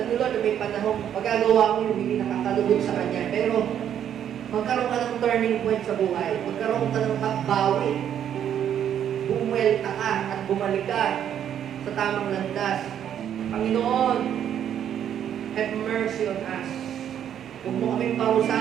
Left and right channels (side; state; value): left; quieter; 9.6 dB